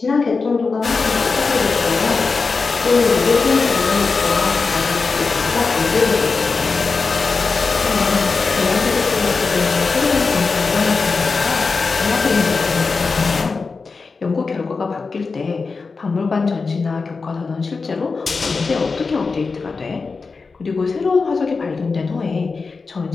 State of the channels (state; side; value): quieter; right; 4.4 dB